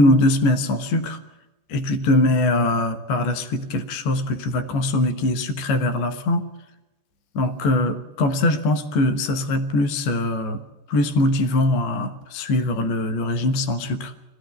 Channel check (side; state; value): right; late; 14 ms